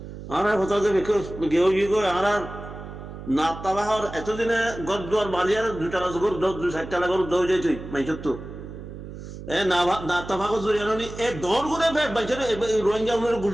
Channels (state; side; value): noise; right; hum, 12 dB below the sound